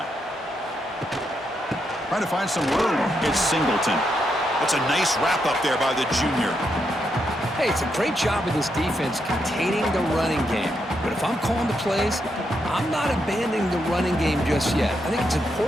Trying to find some room. It's Singleton. That's a nice wrap up there by the junior. Hey, it's a great job of this defense containing the running game. But if I'm calling the plays, I'm not abandoning the running game just yet. I think it's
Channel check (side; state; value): both; normal; correlation 0.81